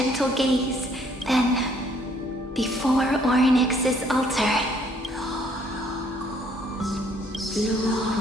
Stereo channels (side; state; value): both; normal; correlation 0.64